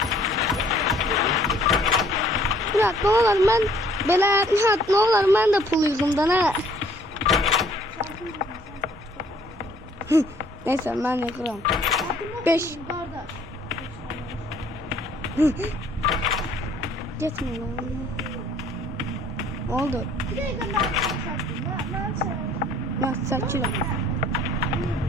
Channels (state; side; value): normal; both; correlation 0.59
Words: Murat ne olur ben böyle ne olur ben de pul yüzümden ha. Neyse ben yakarım. 5. Gitme lan. Oldu. Ben saçıyorum.